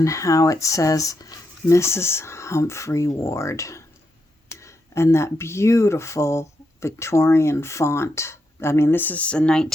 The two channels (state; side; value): normal; both; correlation 0.83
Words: how it says Mrs. Humphrey Ward, and that beautiful Victorian font. I mean, this is a